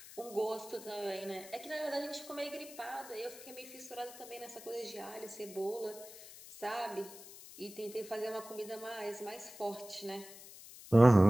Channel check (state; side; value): noise; left; hiss, 16 dB below the sound